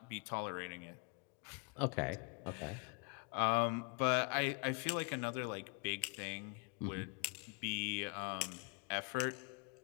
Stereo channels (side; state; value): right; quieter; 33.9 dB